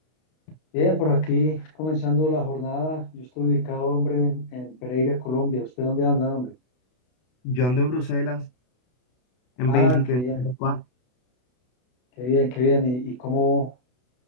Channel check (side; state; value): right; late; 32 ms